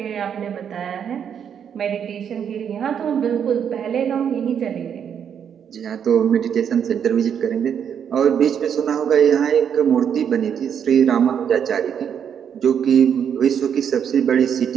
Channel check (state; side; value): quieter; left; 8.1 dB